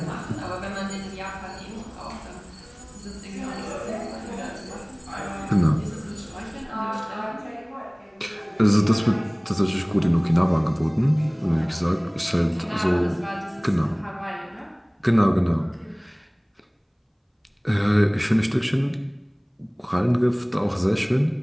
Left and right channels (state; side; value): identical; both; correlation 1.00